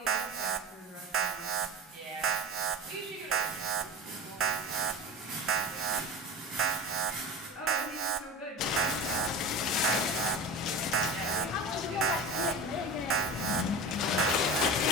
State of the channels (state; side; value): normal; both; correlation 0.31